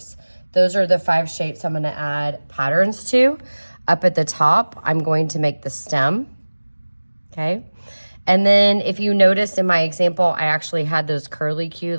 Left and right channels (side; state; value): both; inverted; correlation -1.00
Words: Those are the 5 shapes I'm going to add patterns to. Up at the top, I'm going to make the stem, okay? And then if you noticed in my example, I actually had those curlicues,